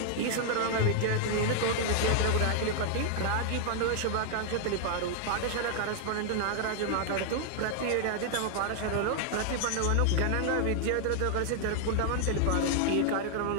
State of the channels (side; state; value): both; different; correlation 0.00